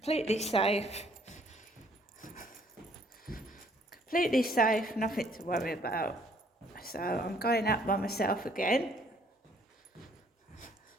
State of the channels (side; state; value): both; normal; correlation 0.63